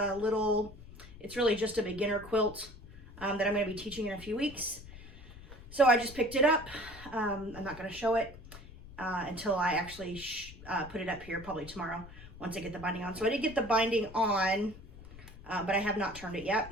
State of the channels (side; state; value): left; noise; rumble, 17 dB below the sound